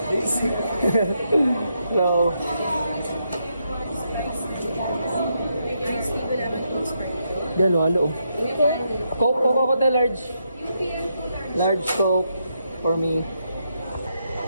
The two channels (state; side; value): inverted; both; correlation -0.80